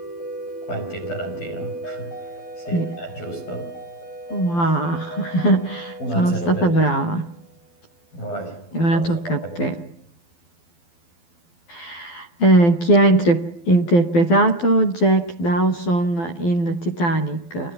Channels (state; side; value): late; right; 12 ms